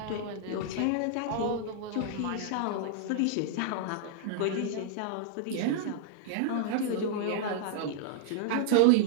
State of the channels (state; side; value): different; both; correlation -0.01